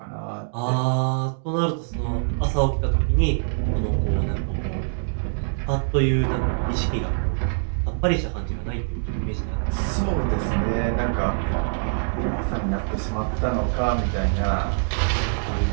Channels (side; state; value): left; silent; digital silence